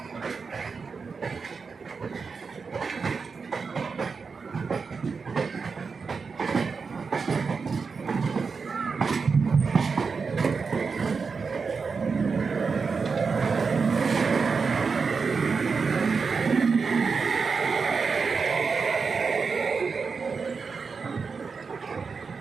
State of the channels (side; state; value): left; quieter; 5.1 dB